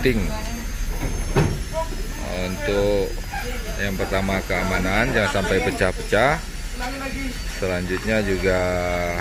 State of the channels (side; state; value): both; identical; correlation 1.00